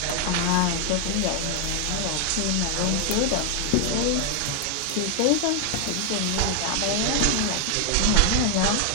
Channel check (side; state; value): both; different; correlation 0.00